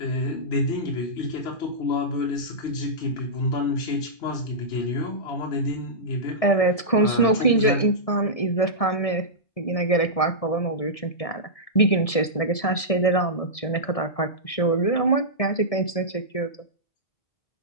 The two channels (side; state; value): right; late; 1.7 ms